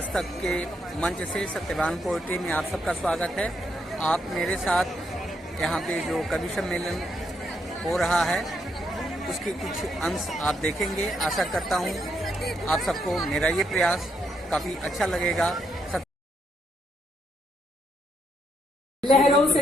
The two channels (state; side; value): normal; both; correlation 0.77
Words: तक के मंच से सत्यवान पोएट्री में आप सबका स्वागत है। आप मेरे साथ यहाँ पे जो कवि सम्मेलन हो रहा है उसके कुछ अंश आप देखेंगे। आशा करता हूँ आप सबको मेरा ये प्रयास काफ़ी अच्छा लगेगा। लहरों